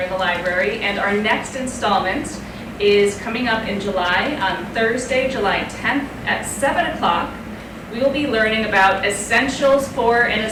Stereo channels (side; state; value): both; identical; correlation 1.00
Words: in the library, and our next installment is coming up in July, on Thursday, July 10th at 7 o'clock. We will be learning about essentials for a